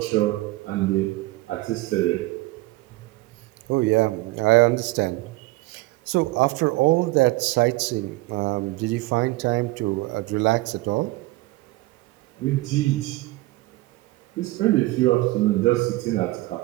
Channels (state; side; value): quieter; left; 20.1 dB